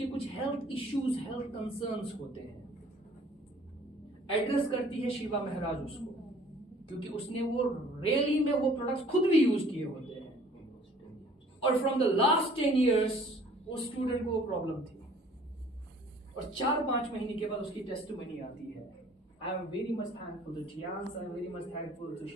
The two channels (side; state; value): both; normal; correlation 0.53